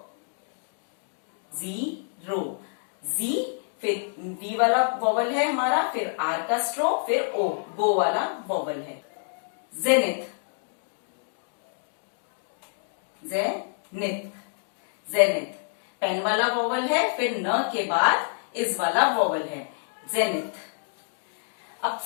जीरो, जी, फिर वी वाला वोवल है हमारा, फिर आर का स्ट्रोक, फिर ओ, गो वाला वोवल है। जेनिथ, जेनिथ, जेनिथ, पेन वाला वोवल है, फिर न के बाद इस वाला वोवल है, जेनिथ। अब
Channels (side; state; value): right; silent; digital silence